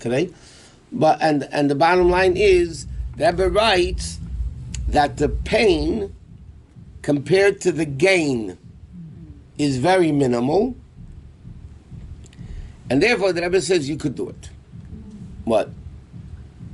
today. But and the bottom line is, the Rebbe writes that the pain compared to the gain is very minimal, and therefore the Rebbe says you could do it. What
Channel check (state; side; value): identical; both; correlation 1.00